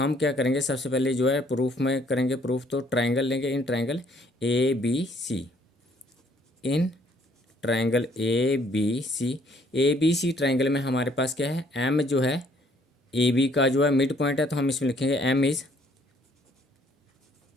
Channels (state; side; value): normal; both; correlation 0.64